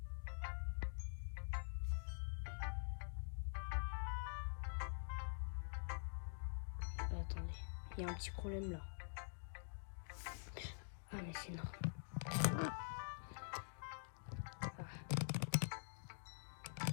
Attendez, il y a un petit problème là. Ah mais c'est normal.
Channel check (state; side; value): silent; right; digital silence